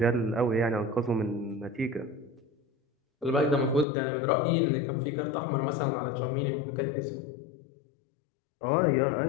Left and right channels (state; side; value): drops out; right; at 3.9 s